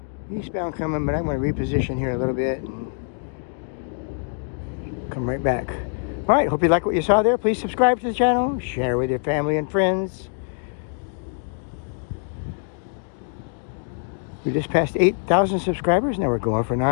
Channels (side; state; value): right; silent; 58 dB below the other